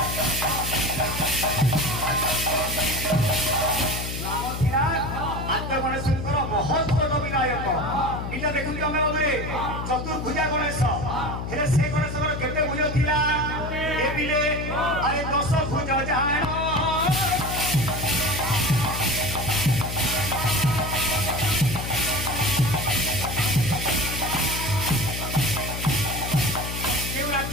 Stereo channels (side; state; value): left; noise; hum, 5 dB below the sound